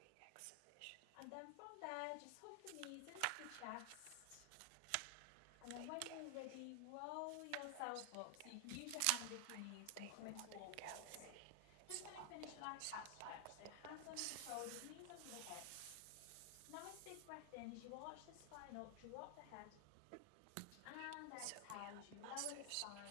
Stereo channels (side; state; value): both; different; correlation 0.00